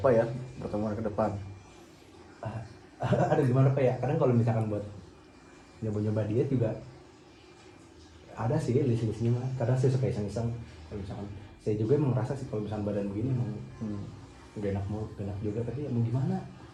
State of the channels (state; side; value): identical; both; correlation 1.00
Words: ya pertemuan ke depan. Ada gimana pak ya, kadang kalau misalkan buat nyoba diet juga ada sih list-listnya mah. Kadang saya suka iseng-iseng, kalau misalkan saya juga emang merasa sih kalau misalkan badan begini emang udah enak juga, tapi ya mau gimana.